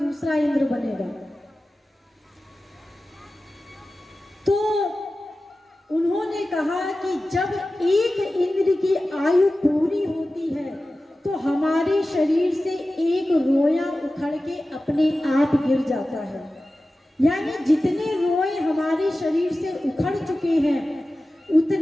इंद्र बनेगा। तो उन्होंने कहा कि जब एक इंद्र की आयु पूरी होती है तो हमारे शरीर से एक रोया उखड़ के अपने आप गिर जाता है। यानी जितने रोए हमारे शरीर से उखड़ चुके हैं,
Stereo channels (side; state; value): both; normal; correlation 0.95